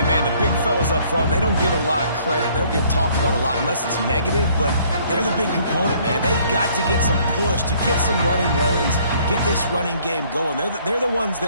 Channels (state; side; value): inverted; both; correlation -0.61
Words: man, the big fellas up front, they don't get a lot of credit. They don't get talked about a lot unless it's negative, but they're the big component, man. They've got to get some push, to get some running lanes, get this running game going. They're the ones